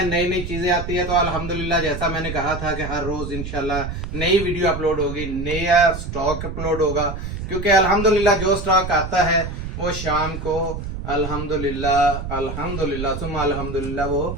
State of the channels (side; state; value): right; noise; rumble, 6 dB below the sound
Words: नई नई चीजें आती है, तो अल्हम्दुलिल्लाह जैसा मैंने कहा था कि हर रोज इंशाल्लाह नई वीडियो अपलोड होगी, नया स्टॉक अपलोड होगा। क्योंकि अल्हम्दुलिल्लाह जो स्टॉक आता है वो शाम को अल्हम्दुलिल्लाह अल्हम्दुलिल्लाह सुम्मा अल्हम्दुलिल्लाह